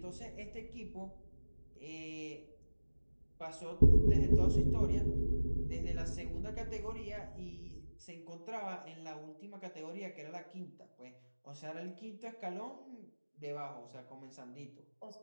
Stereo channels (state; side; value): inverted; both; correlation -1.00